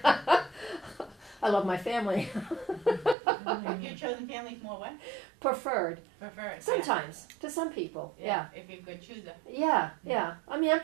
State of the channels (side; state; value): left; drops out; at 3.2 s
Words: I love my family. Your chosen family's more what? Preferred. Preferred. Sometimes, to some people, yeah. If you're a good chooser. Yeah. I mean, I'm